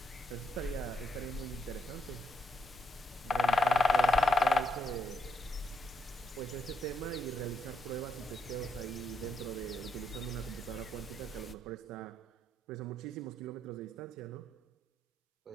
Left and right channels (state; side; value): normal; both; correlation 0.77